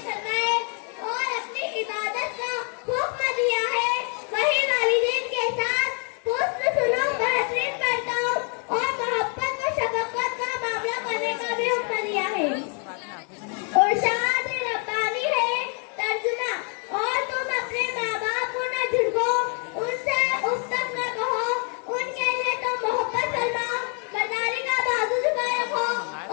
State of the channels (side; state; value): right; quieter; 39.3 dB